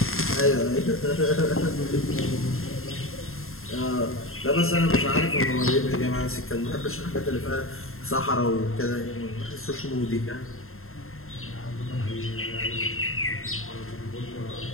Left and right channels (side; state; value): right; late; 0.61 ms